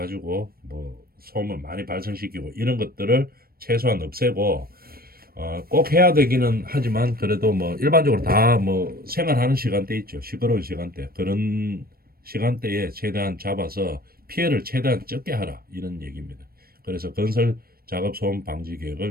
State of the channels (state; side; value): late; left; 0.44 ms